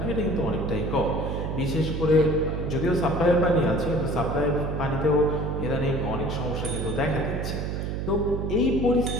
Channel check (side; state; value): right; noise; hum, 3 dB below the sound